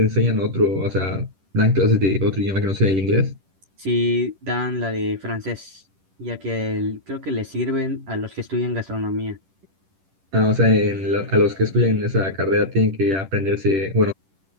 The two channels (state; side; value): late; left; 10 ms